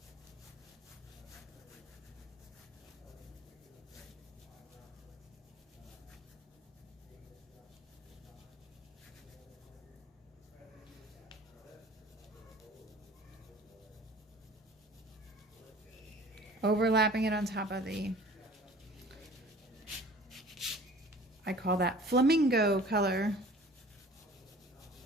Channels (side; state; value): both; normal; correlation 0.47